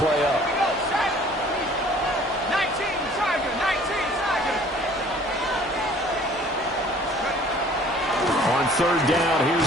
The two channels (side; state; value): both; normal; correlation 0.53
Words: up. 19 Tiger. 19 Tiger. third down.